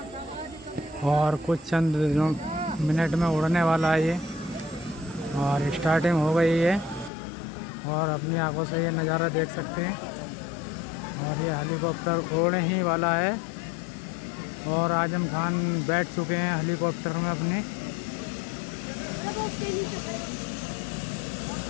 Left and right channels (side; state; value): right; drops out; at 7.1 s